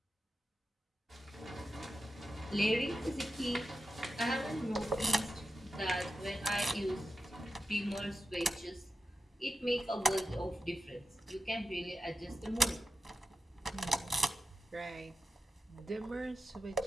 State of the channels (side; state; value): both; normal; correlation 0.91